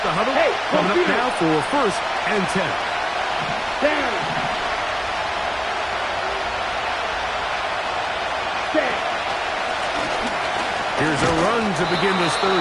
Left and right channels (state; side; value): identical; both; correlation 1.00